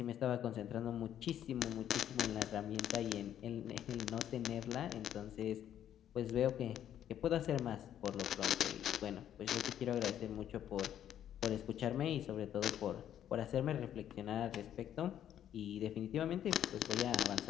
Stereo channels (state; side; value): quieter; right; 10.6 dB